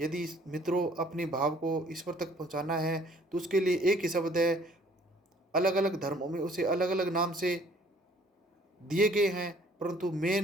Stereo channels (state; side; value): normal; both; correlation 0.58